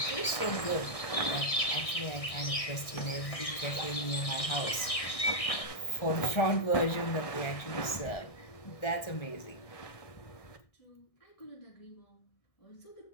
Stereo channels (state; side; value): late; right; 1.6 ms